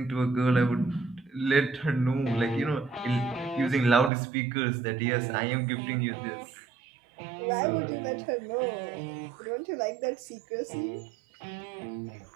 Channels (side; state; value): left; drops out; at 4.1 s